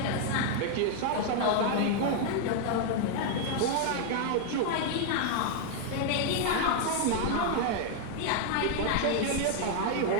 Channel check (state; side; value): different; both; correlation 0.00